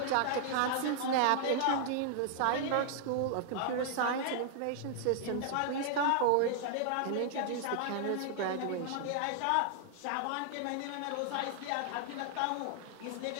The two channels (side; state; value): both; different; correlation -0.01